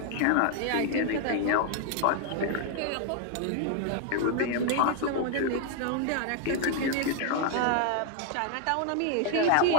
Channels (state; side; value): different; both; correlation 0.00